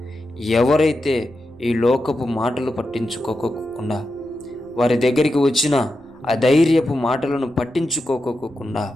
ఎవరైతే ఈ లోకపు మాటలు పట్టించుకోకుండా వారి దగ్గరికి వచ్చిన అధైర్యపు మాటలను పట్టించుకోకుండా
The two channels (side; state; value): right; noise; rumble, 29 dB below the sound